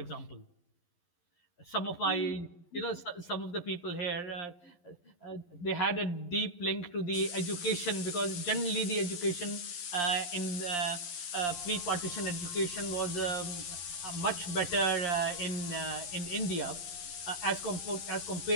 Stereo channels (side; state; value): right; late; 11 ms